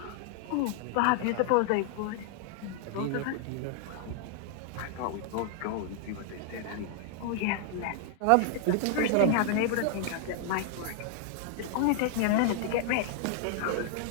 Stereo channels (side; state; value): both; different; correlation 0.00